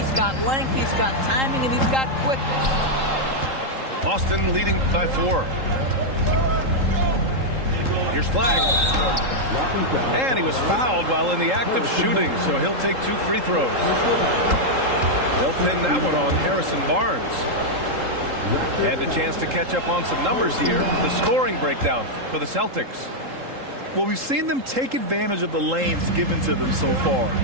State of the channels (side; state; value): left; late; 3.8 ms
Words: got length, he's got timing, and he's got quickness. Boston leading by 4. Here's Flag. And he was fouled while in the act of shooting, so he'll take 2 free throws. They'll pin that one on Harrison Barnes. And a chance to catch up on some numbers here. The scoring breakdown for the Celtics. Well, we've seen them take advantage of the lanes given to them so far.